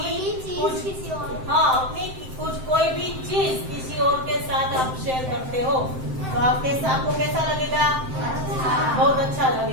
कुछ कोई भी चीज किसी और के साथ आप शेयर करते हो तो आपको कैसा लगेगा? बहुत अच्छा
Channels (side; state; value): left; late; 7.7 ms